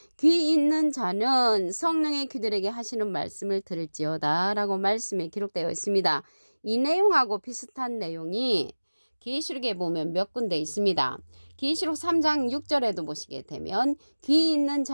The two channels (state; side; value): inverted; both; correlation -1.00